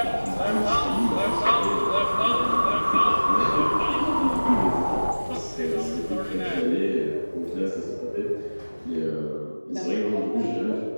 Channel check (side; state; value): both; inverted; correlation -1.00